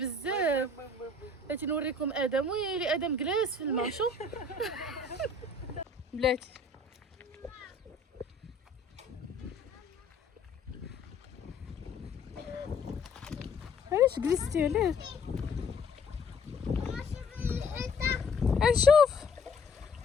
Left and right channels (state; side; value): quieter; right; 3.4 dB